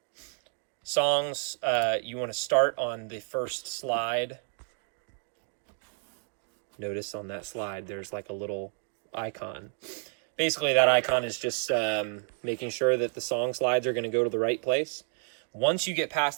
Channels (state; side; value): silent; left; digital silence